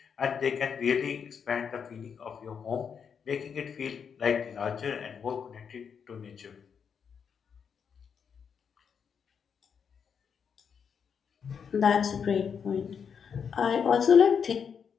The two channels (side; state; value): right; quieter; 6.8 dB